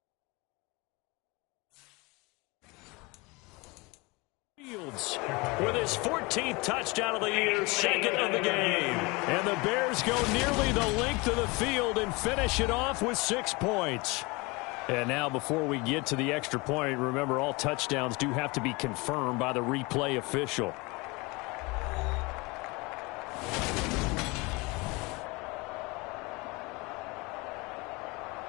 With his 14th touchdown of the year, 2nd of the game. And the Bears go nearly the length of the field and finish it off with 6 points. And now before we get to the extra point, remember all touchdowns do have to be confirmed by the replay official.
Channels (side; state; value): right; quieter; 25.6 dB